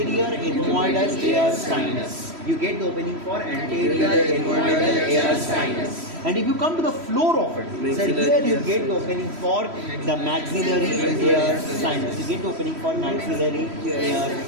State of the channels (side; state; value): left; late; 3.1 ms